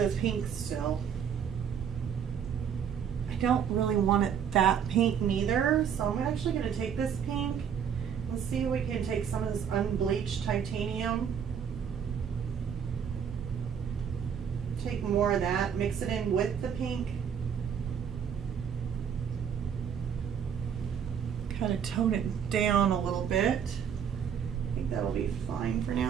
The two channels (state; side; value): quieter; left; 7.9 dB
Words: pink still. I don't really want it that pink neither, so I'm actually going to take this pink. Let's see if we can take some of this unbleached titanium. Take more of that, mix it in with the pink. Kind of tone it down a little bit. I think that'll be fine for